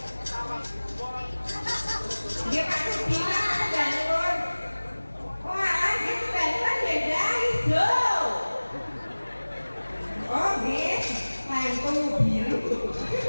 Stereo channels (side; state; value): both; inverted; correlation -1.00